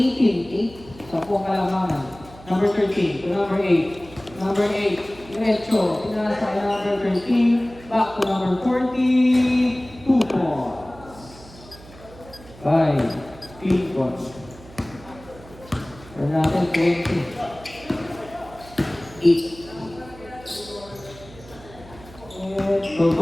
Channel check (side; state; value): right; noise; hum, 20 dB below the sound